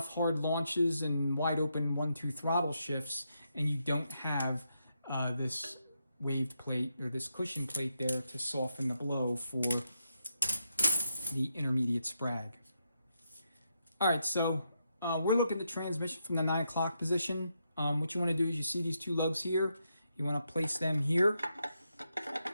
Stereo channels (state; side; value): inverted; both; correlation -0.82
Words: hard launches and wide open 1-2 throttle shifts, and you don't have this waved plate or this cushion plate there to soften the blow for the intermediate sprag. All right, so we're looking at the transmission from the 9 o'clock position. What you want to do is, you see these two lugs here, you want to place them here.